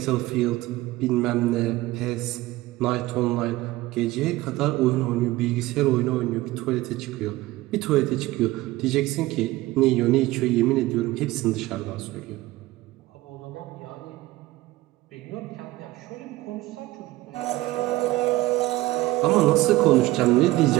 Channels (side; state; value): left; quieter; 18.1 dB